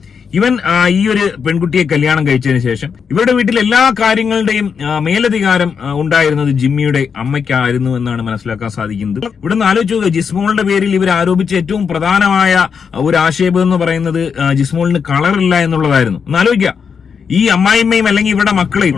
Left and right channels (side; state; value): right; quieter; 6.4 dB